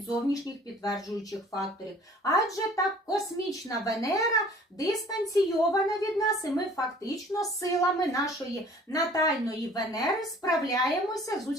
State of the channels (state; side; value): normal; both; correlation 0.51